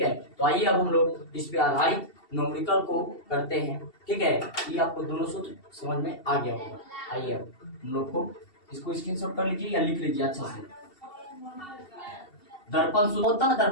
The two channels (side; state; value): right; late; 2.7 ms